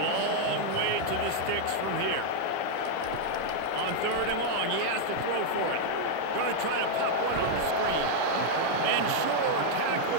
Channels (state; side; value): different; both; correlation 0.00